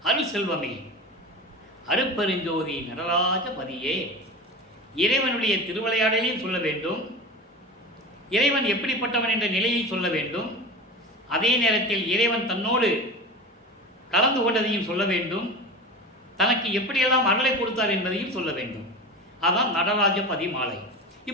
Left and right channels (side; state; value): both; normal; correlation 0.29